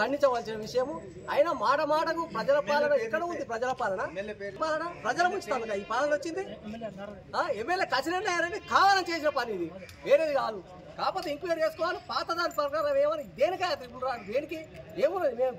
విషయము. అయినా మాటకు ప్రజల పాలన ఎక్కడ ఉంది? ప్రజల పాలన ప్రజల ముంచుతాను ఈ పాలన వచ్చింది. ఎమ్మెల్యే కచ్చినట్టు కావాలని చేసిన పని ఇది, వేరేది కాదు. కాకపోతే ఎంక్వైరీ చేసుకోవాలి. పాత దాని ప్రకారం ఏమని దేనికా దేనికి ఏమున్నది? మేము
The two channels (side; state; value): both; identical; correlation 1.00